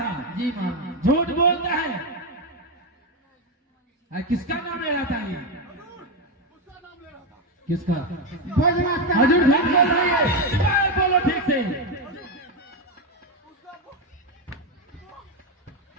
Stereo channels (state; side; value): normal; both; correlation 0.08